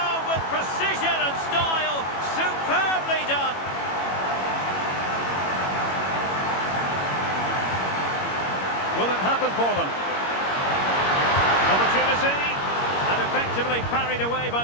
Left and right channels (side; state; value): right; late; 21 ms